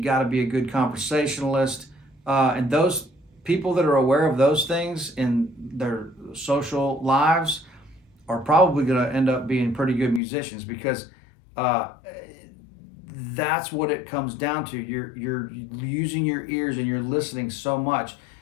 got to be a good conversationalist. And those people that are aware of those things in their social lives are probably going to end up being pretty good musicians, because that's what it comes down to. You're using your ears and you're listening so much.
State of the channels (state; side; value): drops out; right; at 10.2 s